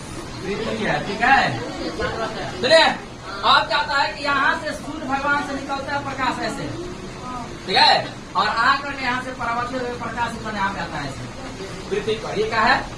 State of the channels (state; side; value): identical; both; correlation 1.00